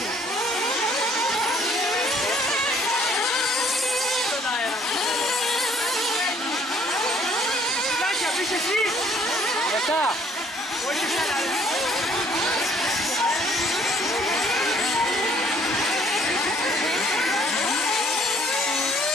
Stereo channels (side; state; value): both; normal; correlation 0.61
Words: Στον αέρα. Κάτια, πεις εσύ. Μετά. Όχι εσένα, ρε.